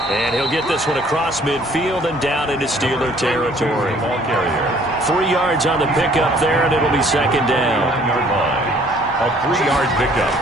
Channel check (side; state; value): both; normal; correlation 0.58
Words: And he'll get this one across midfield and down into Steeler territory. Ball carrier. 3 yards on the pickup there, and it'll be 2nd down. 1-yard line. A 3-yard pickup.